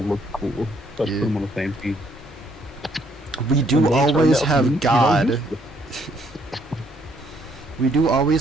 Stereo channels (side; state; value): both; normal; correlation 0.68